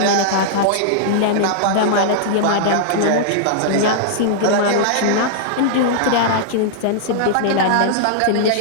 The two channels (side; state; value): both; different; correlation -0.01